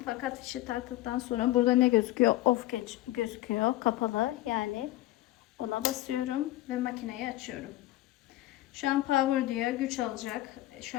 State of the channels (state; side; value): quieter; right; 16.5 dB